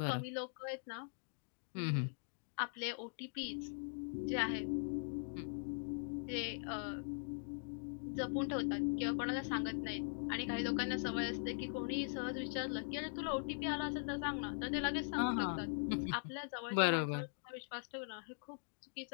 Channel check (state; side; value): silent; right; digital silence